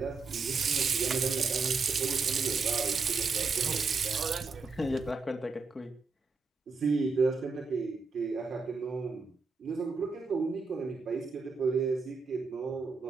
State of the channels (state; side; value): quieter; left; 4.4 dB